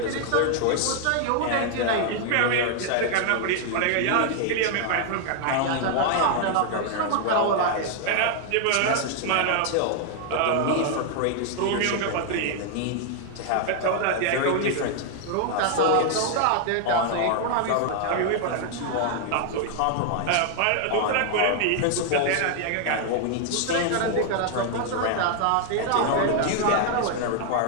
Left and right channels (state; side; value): different; both; correlation 0.00